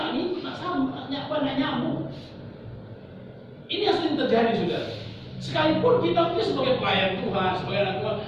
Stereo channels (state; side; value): identical; both; correlation 1.00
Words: sama, nggak nyambung. Ini yang sering terjadi, saudara. Sekalipun kita punya sebagai pelayan Tuhan, sebagai anak Tuhan,